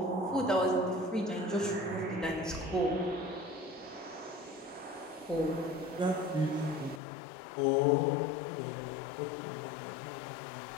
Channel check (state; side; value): drops out; right; at 7.0 s